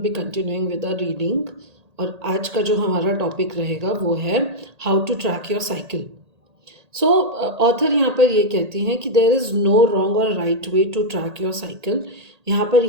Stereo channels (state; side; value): late; left; 1.8 ms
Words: continuing with our reading. और आज का जो हमारा टॉपिक रहेगा वो है how to track your cycle. So author यहाँ पर ये कहती हैं कि देयर इज़ नो रॉन्ग और right way to track your cycle. यहाँ पर